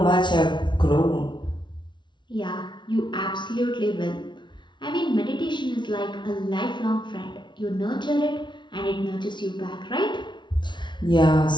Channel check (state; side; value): late; right; 0.23 ms